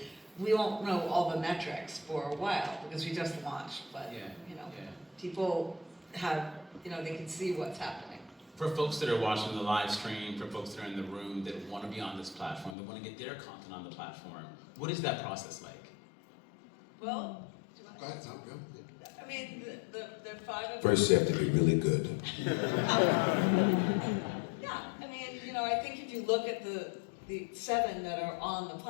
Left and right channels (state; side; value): drops out; right; at 12.8 s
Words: We won't know all the metrics for a while because we just launched, but people have, they can see what's happening. For folks that are watching the live stream, for folks that are in the room that want to be on this platform, that want to get their content on the platform, what is that process like? Well, Go ahead, Tom, go. I mean, the 5 of First, you have to be really good. Yeah, I mean, I think if you look at the 7 that are on the